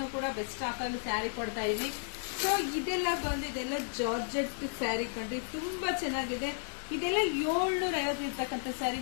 ಬೆಸ್ಟ್ ಆಫರ್ ಸ್ಯಾರಿ ಕೊಡ್ತಾ ಇದೀನಿ. ಸೊ ಇದೆಲ್ಲ ಬಂದಿದೆಲ್ಲ ಜಾರ್ಜೆಟ್ ಸ್ಯಾರಿ ಕಂಡ್ರಿ, ತುಂಬಾ ಚೆನ್ನಾಗಿದೆ. ಇದೆಲ್ಲ 750 ಇರ್ತಕ್ಕಂಥ ಸ್ಯಾರಿ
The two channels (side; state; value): right; silent; 56 dB below the other